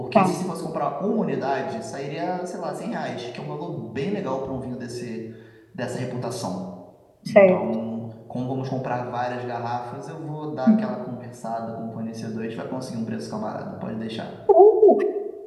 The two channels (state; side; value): identical; both; correlation 1.00